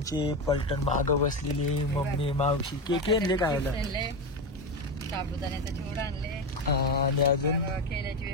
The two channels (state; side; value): normal; both; correlation 0.16